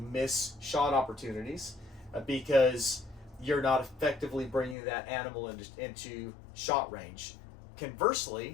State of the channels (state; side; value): drops out; right; at 4.8 s